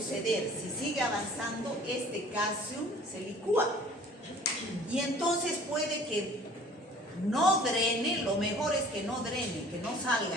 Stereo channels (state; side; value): normal; both; correlation 0.50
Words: Si sigue avanzando, este caseum se licúa. Y entonces puede que no drene, lo mejor es que no drene, que no